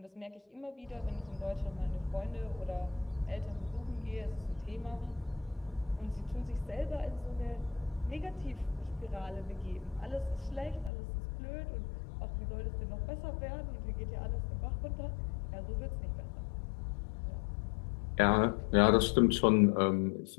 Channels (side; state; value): right; drops out; at 10.9 s